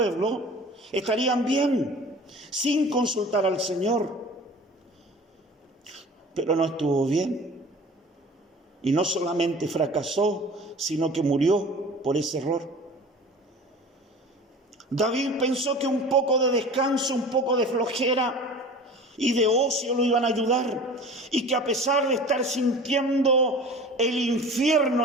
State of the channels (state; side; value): normal; both; correlation 0.41